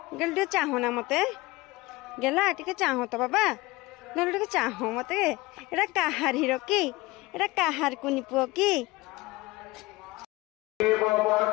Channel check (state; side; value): quieter; right; 21.2 dB